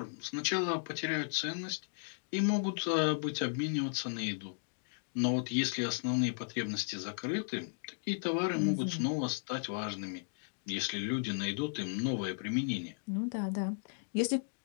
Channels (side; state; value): right; silent; digital silence